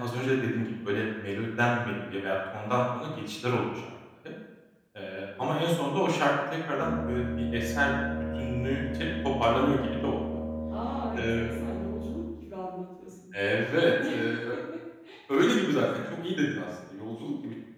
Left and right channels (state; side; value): identical; both; correlation 1.00